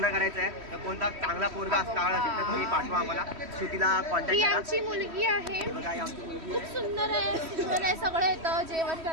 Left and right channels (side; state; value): left; late; 3.1 ms